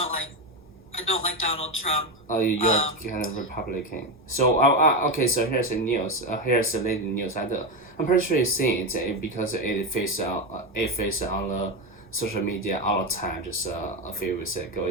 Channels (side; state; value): both; normal; correlation 0.13